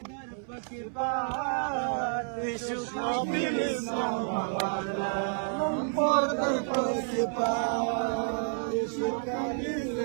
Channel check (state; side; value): silent; left; 58 dB below the other